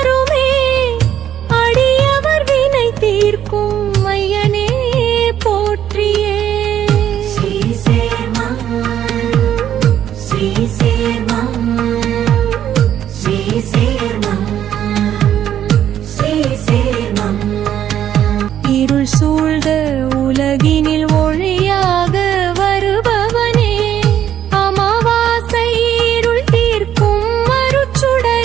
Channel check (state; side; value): quieter; left; 10.5 dB